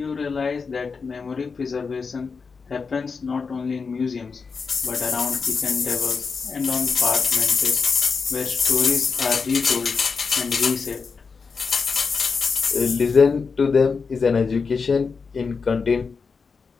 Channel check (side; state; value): right; quieter; 5.1 dB